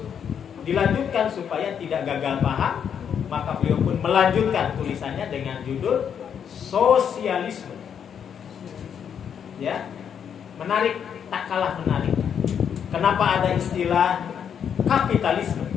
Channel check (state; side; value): quieter; right; 8.0 dB